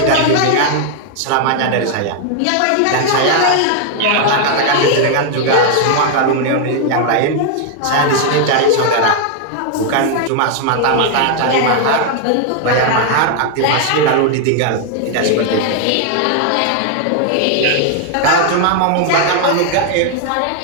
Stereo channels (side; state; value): both; different; correlation 0.00